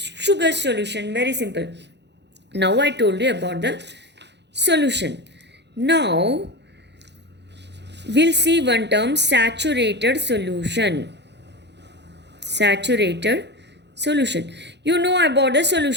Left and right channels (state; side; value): late; left; 0.50 ms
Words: solution. Very simple. Now I told you about the solution. Now we'll see one term, saturated solution. Saturated solution. You know about the